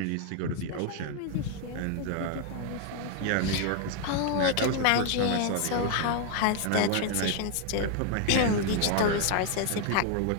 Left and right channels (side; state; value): both; different; correlation 0.00